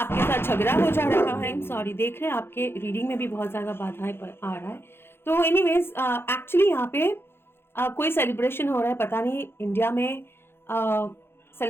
साथ झगड़ा हो जा रहा है। सॉरी, देख रहे हैं आपके रीडिंग में भी बहुत ज्यादा बाधाएं आ रहा है। तो एनीवेज, एक्चुअली यहाँ पे कोई सेलिब्रेशन हो रहा है, पता नहीं, इंडिया में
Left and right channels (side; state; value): right; late; 0.11 ms